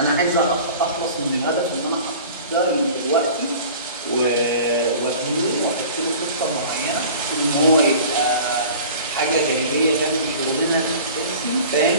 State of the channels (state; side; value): inverted; both; correlation -0.42